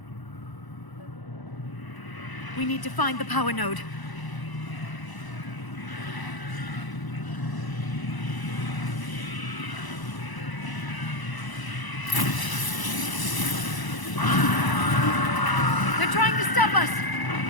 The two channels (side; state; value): right; late; 1.0 ms